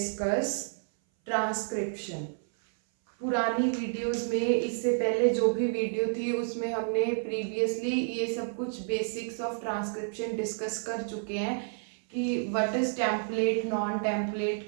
transcription. पुरानी videos में इससे पहले जो भी video थी उसमें हमने प्रीवियसली ये सब कुछ बेसिक्स ऑफ ट्रांसक्रिप्शन डिस्कस कर चुके हैं कि what is template, non template,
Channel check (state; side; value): silent; left; 58 dB below the other